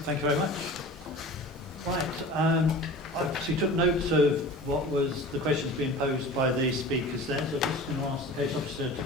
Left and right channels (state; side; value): normal; both; correlation 0.38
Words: Thank you very much. Right, I obviously took notes of what was the questions being posed by the speakers then, so I'm just going to ask the case officer to